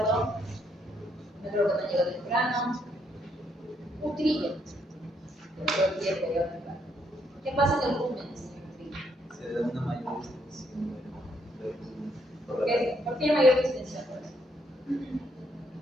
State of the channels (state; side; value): normal; both; correlation 0.73